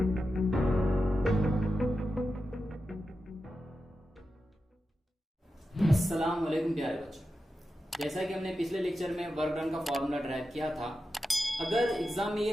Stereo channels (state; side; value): normal; both; correlation 0.90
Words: वालेकुम प्यारे बच्चों, जैसा कि हमने पिछले लेक्चर में वर्क डन का फॉर्मूला ड्राइव किया था। अगर एग्जाम में ये